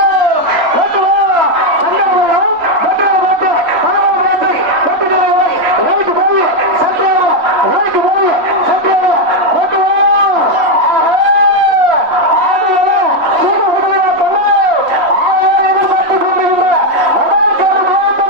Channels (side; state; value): left; late; 3.1 ms